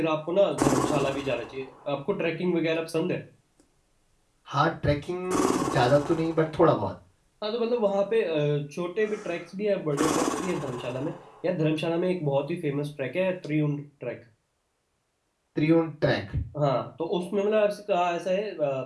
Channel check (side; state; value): both; identical; correlation 1.00